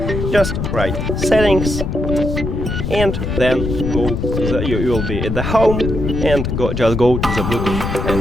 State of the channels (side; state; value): left; noise; rumble, 3 dB below the sound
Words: just write settings and then you will be at the home and just go to the Bluetooth